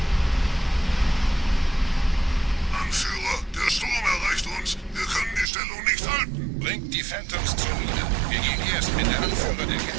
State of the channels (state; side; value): drops out; left; at 5.5 s